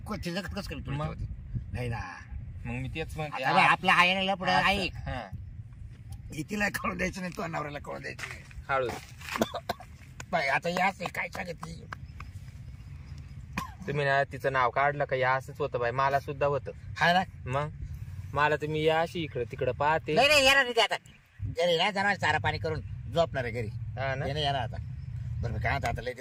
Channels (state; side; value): identical; both; correlation 1.00